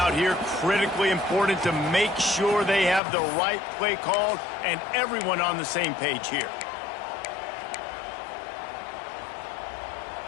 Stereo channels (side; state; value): right; drops out; at 3.0 s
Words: here. Critically important to make sure they have the right play called and everyone on the same page here.